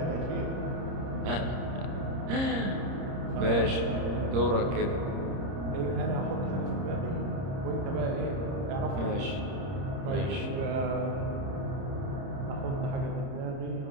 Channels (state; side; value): late; left; 30 ms